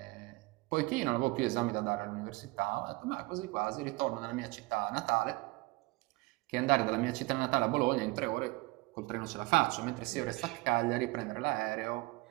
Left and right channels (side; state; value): left; quieter; 23.5 dB